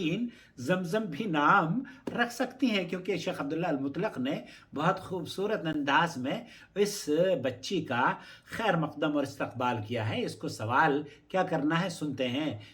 زمزم بھی نام رکھ سکتی ہیں، کیونکہ شیخ عبداللہ المطلق نے بہت خوبصورت انداز میں اس بچی کا خیر مقدم اور استقبال کیا ہے۔ اس کو سوال کیا کرنا ہے سنتے ہیں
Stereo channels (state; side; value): identical; both; correlation 1.00